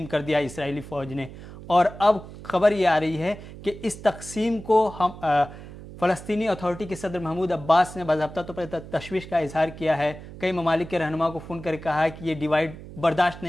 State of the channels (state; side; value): noise; right; hum, 14 dB below the sound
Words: कर दिया इसराइली फ़ौज ने और अब खबर ये आ रही है कि इस तकसीम को हम फ़लस्तीनी अथॉरिटी के सदर महमूद अब्बास ने बाज़ाब्ता तौर पर तशवीश का इजहार किया है। कई ममालिक के रहनुमा को फ़ोन करके कहा है कि ये डिवाइड बर्दाश्त